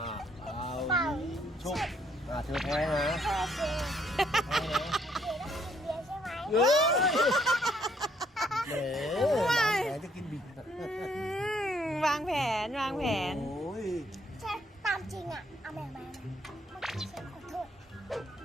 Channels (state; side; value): normal; both; correlation 0.69